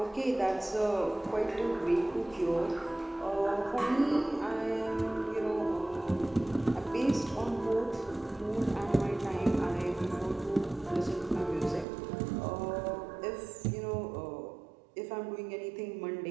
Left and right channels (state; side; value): drops out; left; at 11.9 s